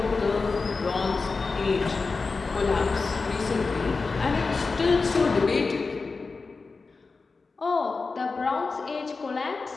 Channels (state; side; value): quieter; right; 4.2 dB